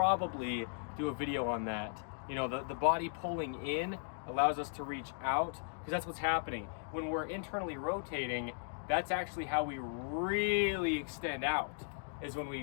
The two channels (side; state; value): right; silent; digital silence